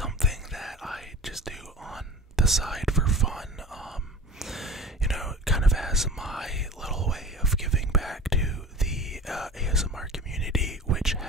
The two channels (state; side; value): normal; both; correlation 0.38